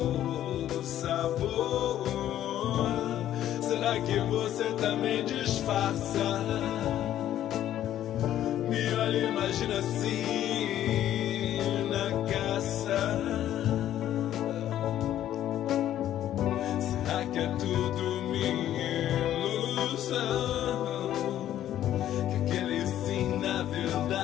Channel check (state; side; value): quieter; right; 11.9 dB